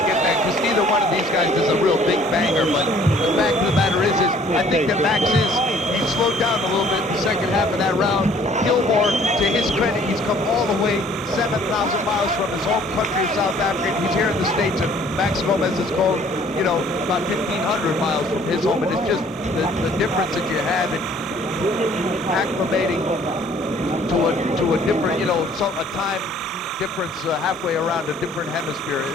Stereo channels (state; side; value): normal; both; correlation 0.57